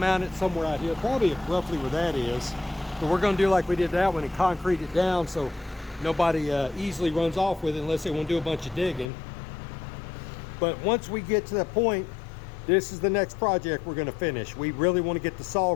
it somewhere out here, probably roughly where that is. But we're gonna do like we did that one and concrete it down so nobody easily runs off with it unless they want to do a bunch of digging. But once we get to that point, this is the next project we're gonna finish. We really want to get the saw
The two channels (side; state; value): right; drops out; at 9.1 s